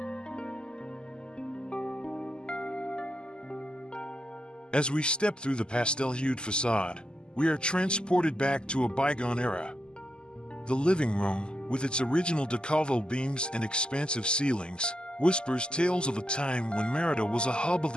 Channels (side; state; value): right; late; 0.048 ms